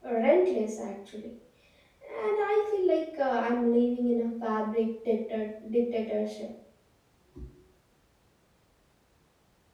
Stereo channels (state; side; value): identical; both; correlation 1.00